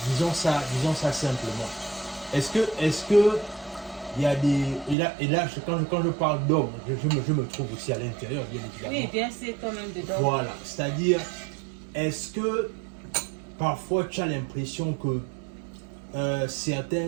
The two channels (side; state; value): left; drops out; at 5.0 s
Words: disons ça simplement. Est-ce que il y a des... Et là quand je parle d'homme, je me trouve aussi à l'intérieur, bien évidemment. Oui, bien sûr, quand même dedans. Voilà, c'est-à-dire, est-ce que parfois tu as l'impression que